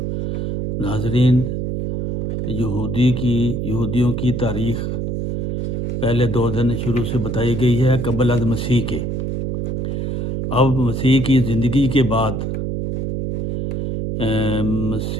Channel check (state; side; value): noise; right; hum, 1 dB below the sound